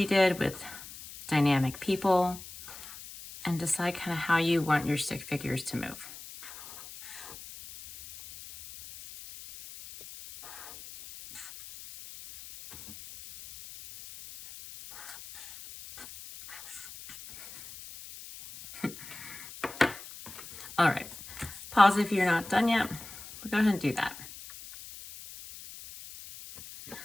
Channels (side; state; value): left; noise; hiss, 14 dB below the sound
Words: you did with dynamic people, and decide kind of how you want your stick figures to move. All right, pause if you're not done yet, but go ahead and do that.